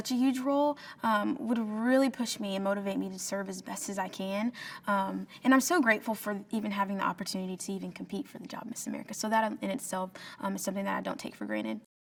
a huge role would really push me and motivate me to serve as best as I can. And I'm so grateful for even having the opportunity to even compete for the job Miss America. So that in itself is something that I don't take for granted.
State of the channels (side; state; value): both; identical; correlation 1.00